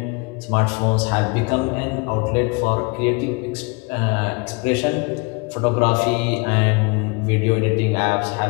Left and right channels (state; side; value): quieter; right; 29.6 dB